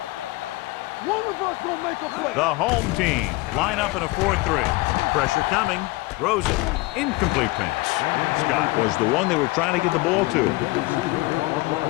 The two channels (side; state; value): right; quieter; 21.9 dB